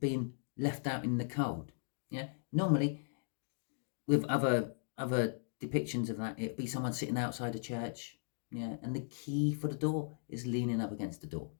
left out in the cold. Yeah, normally with other depictions of that, it'd be someone sitting outside a church. Yeah, and the key for the door is leaning up against the door.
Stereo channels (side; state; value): right; silent; digital silence